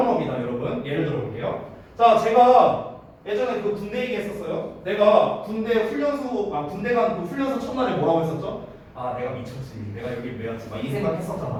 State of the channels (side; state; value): both; identical; correlation 1.00